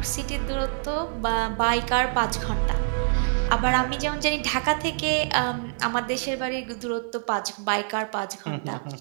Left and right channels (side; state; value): left; silent; 56 dB below the other